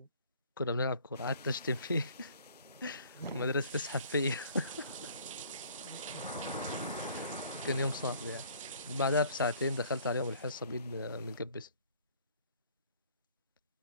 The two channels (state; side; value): inverted; both; correlation -0.55